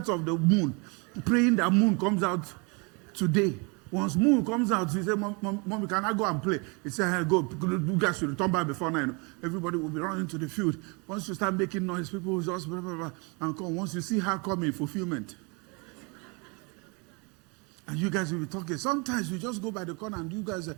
of the moon, praying that moon comes out today. Once moon comes out, she said, Mommy, can I go and play? He said, hey, go. You guys should return back before 9. Everybody will be running to the field. Once you start making noise, people will just blah, blah, blah, and come. Once you see her coming, fulfillment. And you guys will be talking. Sometimes you just go by the corner and you guys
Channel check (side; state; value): left; quieter; 31.1 dB